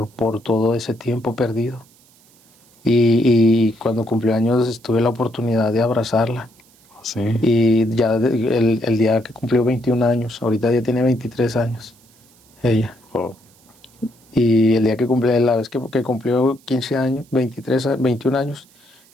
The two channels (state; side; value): noise; right; hiss, 30 dB below the sound